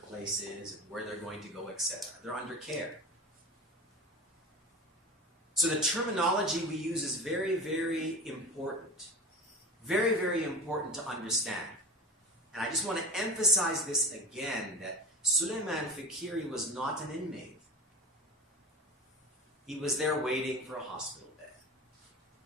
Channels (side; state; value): both; normal; correlation 0.32